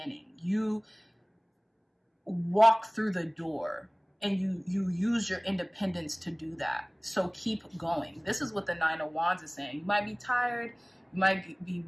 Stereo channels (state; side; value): identical; both; correlation 1.00